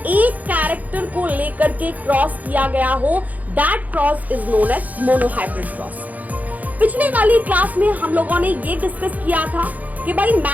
कैरेक्टर को लेकर के क्रॉस किया गया हो। That cross is known as mono hybrid cross. पिछले वाली क्लास में हम लोगों ने ये डिस्कस किया था कि भाई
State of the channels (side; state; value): left; late; 0.078 ms